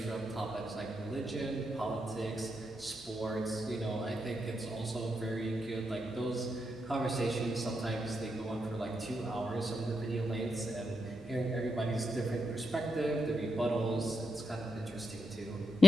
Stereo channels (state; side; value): normal; both; correlation 0.84